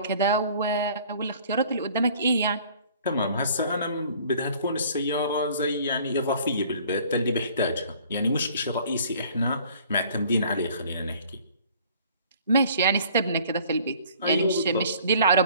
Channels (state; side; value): inverted; both; correlation -0.53